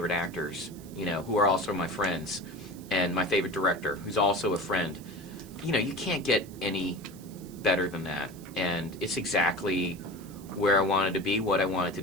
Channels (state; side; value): noise; right; hiss, 22 dB below the sound